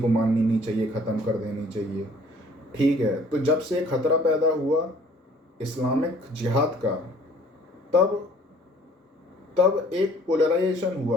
को माननी नहीं चाहिए, ख़त्म कर देनी चाहिए। ठीक है, तो जब से खतरा पैदा हुआ इस्लामिक जिहाद का, तब तब एक पोलराइजेशन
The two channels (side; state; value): both; normal; correlation 0.55